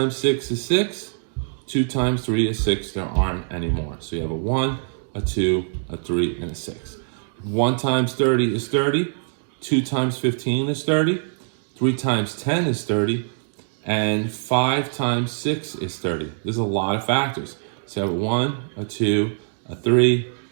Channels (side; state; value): left; silent; digital silence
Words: 6 is 6. 2 times 3 is 6. There aren't any more. So you have a 1, a 2, a 3, and a 6. 1 times 30 is 30. 2 times 15 is 30. 3 times 10 is 30. And 5 times 6 is 30. There's a lot of factors. So you have a 1, a 2, a 3,